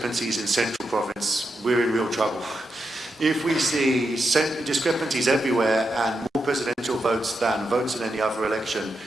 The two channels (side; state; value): both; normal; correlation 0.86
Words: in Central Province, we're in real trouble. If we see discrepancies everywhere and more presidential votes than votes in any other election